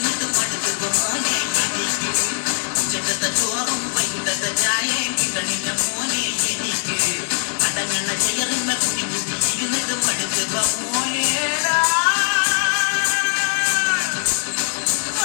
പടുത്തുക മോനെ എനിക്ക്. ഉച്ചക്കത്തെ ചോറും വൈകിട്ടത്തെ ചായയും കിട്ടണില്ല മോനെ എനിക്ക്. മടങ്ങുന്ന ചെയറിമ ഇരുന്നിട്ട് പടുത്തുക മോനേടാ.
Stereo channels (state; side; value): silent; right; digital silence